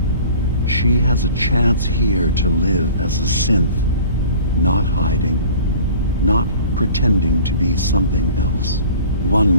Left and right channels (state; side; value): inverted; both; correlation -0.45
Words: She has a chance here to live as a synth, not hiding, not pretending to be something else. One